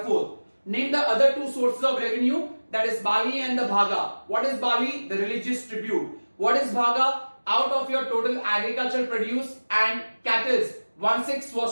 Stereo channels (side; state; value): both; inverted; correlation -1.00